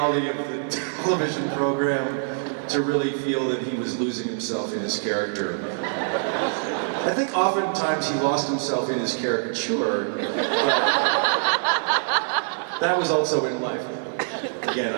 of the television program to really feel that he was losing himself in his character. I think oftentimes he lost himself in his caricature. That was also in life. Again,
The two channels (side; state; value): left; silent; 58 dB below the other